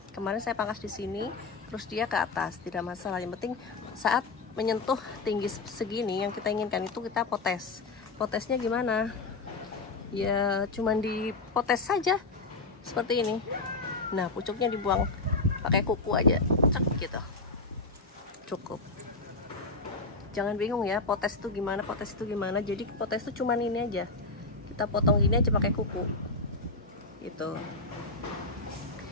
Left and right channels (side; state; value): right; quieter; 3.5 dB